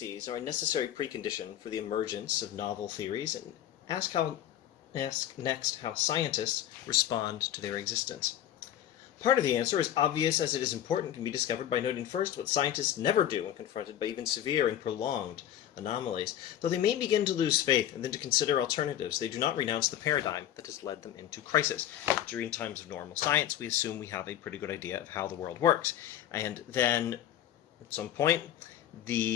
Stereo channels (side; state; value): right; quieter; 11.3 dB